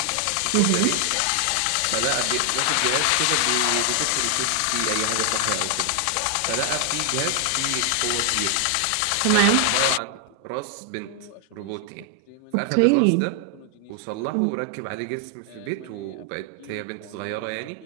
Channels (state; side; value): different; both; correlation 0.00